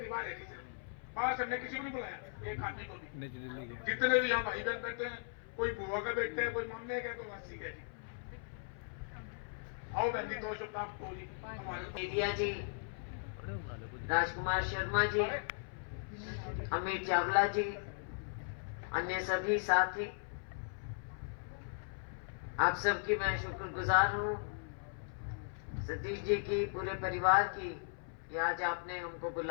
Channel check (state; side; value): silent; right; 53 dB below the other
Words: है जी। बाहर से हमने किसी को नहीं बुलाया, एक आदमी को भी। जितने भी यहाँ भाई बहन बैठे हैं, कोई बुआ का बेटे है, कोई मम्मी का, कोई मासी का जी। आओ बहन जी, 2 शब्द आपको जी। मीडिया जी, राजकुमार शर्मा जी, अमित चावला जी, अन्य सभी साथी, आप सबकी मैं शुक्रगुजार हूँ। सतीश जी की, पूरे परिवार की, कि आज आपने हमको